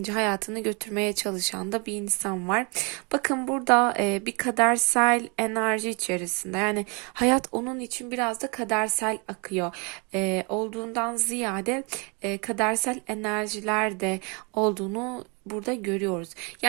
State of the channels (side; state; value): left; quieter; 32.3 dB